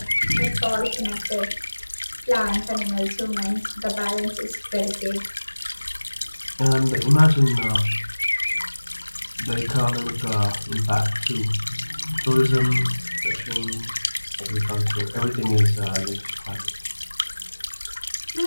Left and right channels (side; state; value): both; inverted; correlation -1.00